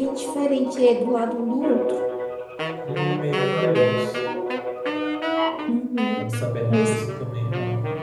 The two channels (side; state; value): both; identical; correlation 1.00